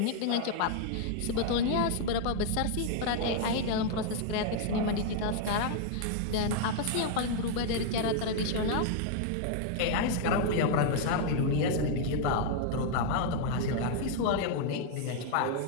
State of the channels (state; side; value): different; both; correlation 0.00